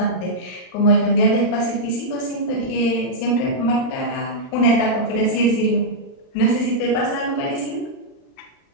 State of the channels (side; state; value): right; late; 39 ms